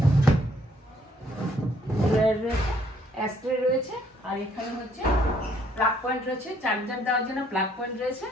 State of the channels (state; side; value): normal; both; correlation 0.66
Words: ড্রয়ার রয়েছে, অ্যাস্ট্রে রয়েছে। আর এখানে হচ্ছে প্লাগ পয়েন্ট রয়েছে, চার্জার দেওয়ার জন্য প্লাগ পয়েন্ট রয়েছে।